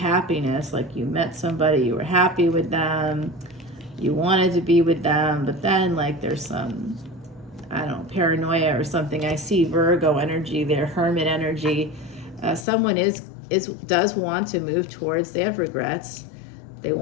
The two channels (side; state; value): right; drops out; at 12.7 s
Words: like you met somebody, you were happy with them, you wanted to be with them, but then like there's some, I don't know, paranoia or something. I see Virgo energy there, Hermit energy. Someone does want to move towards, they have regrets. They